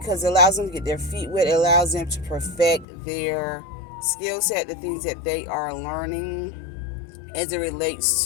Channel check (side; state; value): right; drops out; at 2.9 s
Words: it allows them to get their feet wet, it allows them to perfect their skill set, the things that they are learning as it